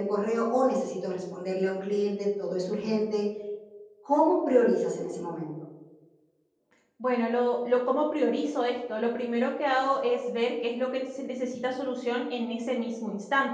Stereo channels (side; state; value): both; identical; correlation 1.00